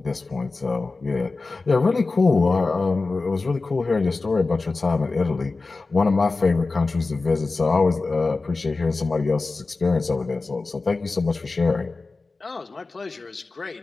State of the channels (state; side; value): quieter; right; 3.7 dB